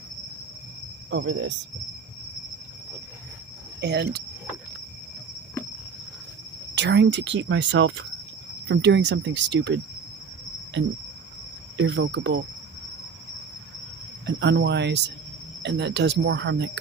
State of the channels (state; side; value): quieter; left; 5.6 dB